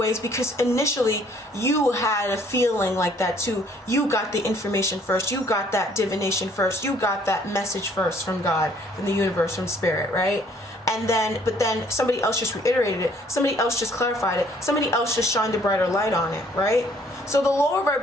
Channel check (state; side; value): normal; both; correlation 0.61